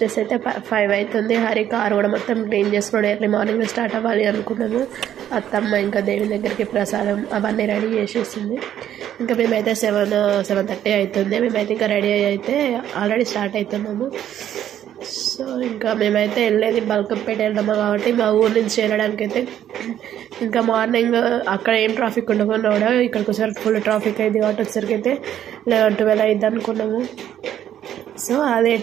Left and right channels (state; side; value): quieter; left; 10.8 dB